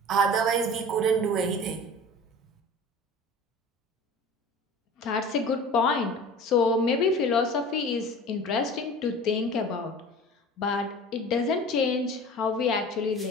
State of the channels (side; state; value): both; normal; correlation 0.39